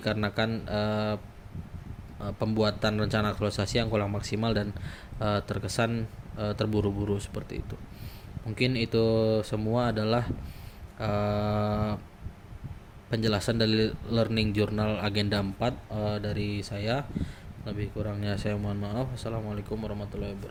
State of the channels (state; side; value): identical; both; correlation 1.00